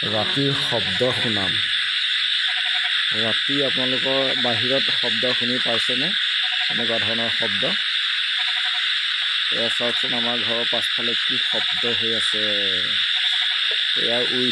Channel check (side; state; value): both; identical; correlation 1.00